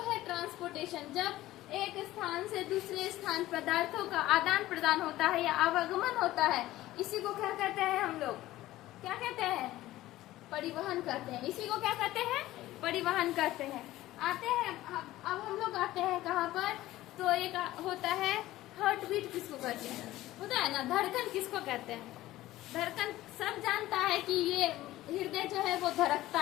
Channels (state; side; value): quieter; right; 16.0 dB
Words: है ट्रांसपोर्टेशन। जब एक स्थान से दूसरे स्थान पदार्थों का आदान प्रदान होता है या आवागमन होता है, इसी को क्या कहते हैं हम लोग? क्या कहते हैं? परिवहन कहते हैं। इसी को क्या कहते हैं? परिवहन कहते हैं। आते हैं अब हम लोग आते हैं कहाँ पर? तो एक होता है हार्ट बीट, किसको कहते हैं? होता है ना, धड़कन किसको कहते हैं? धड़कन सब जानता है कि ये हृदय जो है वो